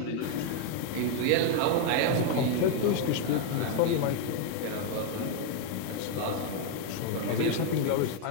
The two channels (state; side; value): different; both; correlation 0.01